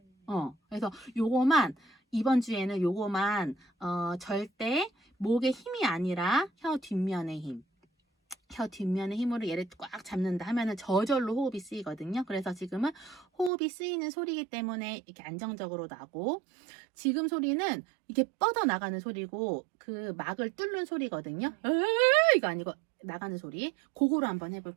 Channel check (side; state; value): left; drops out; at 13.5 s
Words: 그래서 요거만 이번 주에는 요거만 절대 목의 힘이 아니라 혀 뒷면의 힘. 혀 뒷면의 힘으로 얘를 꽉 잡는다 하면은 저절로 호흡이 쓰이거든요. 그래서 지금은 호흡이 쓰이는 소리이기 때문에 이렇게 안정적으로 나고, 지금 소리는 이게 뻗어 나가는 소리고 그 막을 뚫는 소리거든요. 이거 아니고 나가는 소리. 그거로 한번